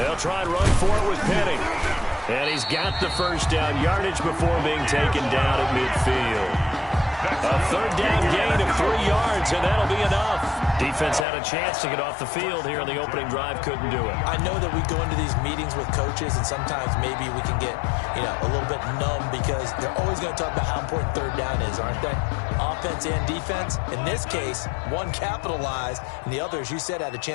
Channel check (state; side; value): drops out; right; at 11.2 s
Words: try and run for it with Penny. And he's got the first down yardage before being taken down at midfield. A third down gain of 3 yards, and that'll be enough. Defense had a chance to get off the field here in the opening drive, couldn't do it. I know that we go into these meetings with coaches, and sometimes maybe we can get, a little bit numb because they're always going to talk about how important third down is, aren't they? Offense and defense. In this case, one capitalized, and the other, as you said, had a